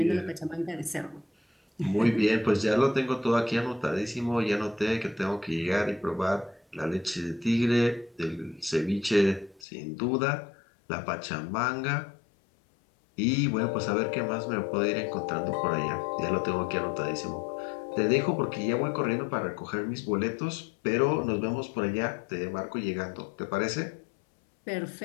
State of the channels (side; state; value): right; drops out; at 9.6 s